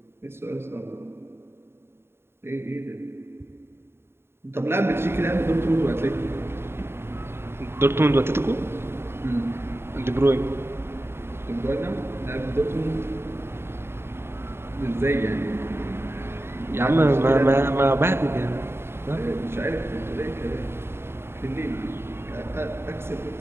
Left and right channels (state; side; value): late; left; 0.12 ms